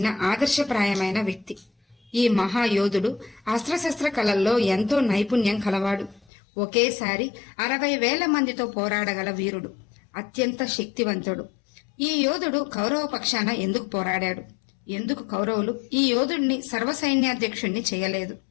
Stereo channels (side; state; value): right; drops out; at 6.2 s